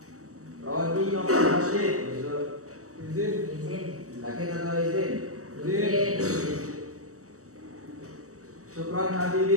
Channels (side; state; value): left; late; 0.65 ms